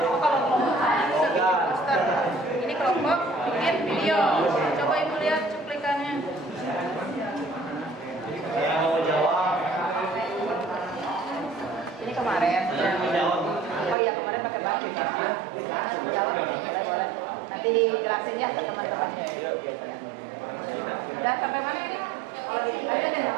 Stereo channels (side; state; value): left; drops out; at 14.0 s